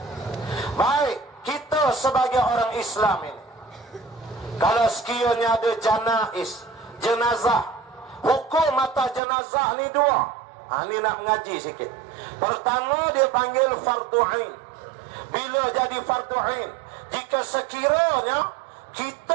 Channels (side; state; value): left; drops out; at 9.2 s